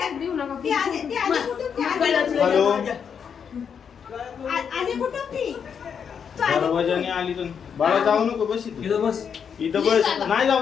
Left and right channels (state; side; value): quieter; right; 7.1 dB